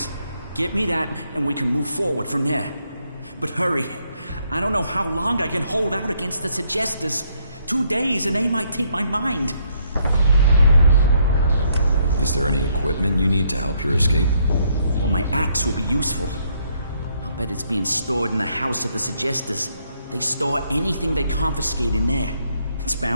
Get me that, and we can move forward from there. But hurry. I don't know how long I can hold out against the Suggestors. 2 days and they might take my mind. Is there any equipment you need to help your escape? Well, my axe will be useful. I'll bet it's being stored in the house of the Suggestors. They store anything they confiscate in there. It's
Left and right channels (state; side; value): inverted; both; correlation -0.71